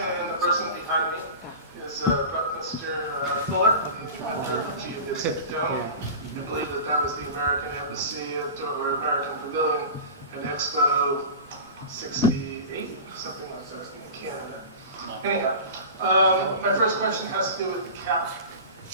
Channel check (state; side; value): inverted; both; correlation -0.32